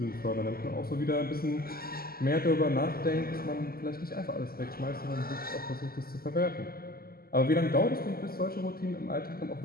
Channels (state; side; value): late; right; 0.43 ms